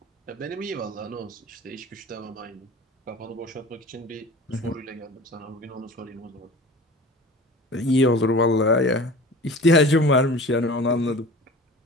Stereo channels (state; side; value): normal; both; correlation 0.40